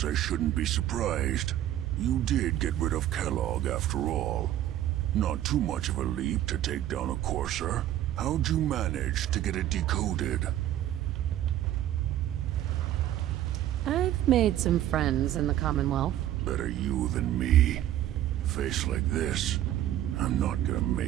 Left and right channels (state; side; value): quieter; left; 12.5 dB